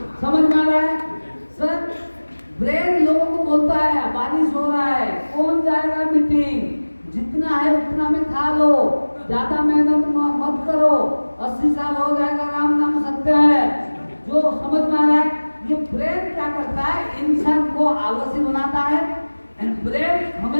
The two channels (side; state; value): both; inverted; correlation -1.00